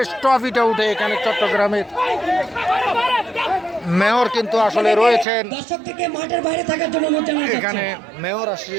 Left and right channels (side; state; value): left; drops out; at 5.2 s